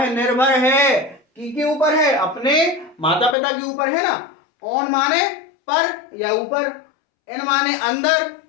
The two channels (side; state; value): right; drops out; at 3.4 s